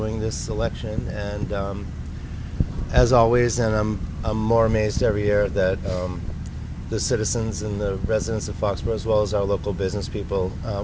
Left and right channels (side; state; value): both; identical; correlation 1.00